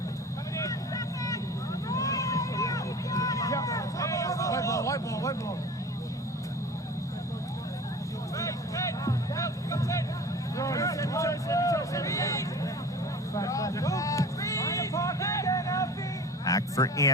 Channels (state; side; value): normal; both; correlation 0.39